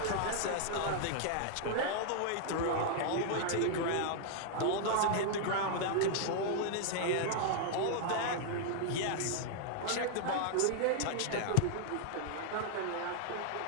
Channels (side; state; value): both; different; correlation -0.01